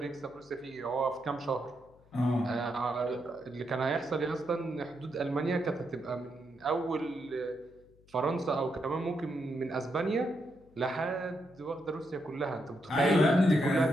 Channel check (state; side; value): noise; left; hum, 28 dB below the sound